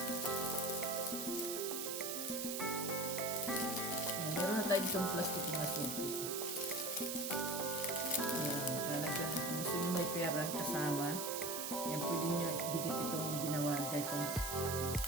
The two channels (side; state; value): right; noise; hiss, 3 dB below the sound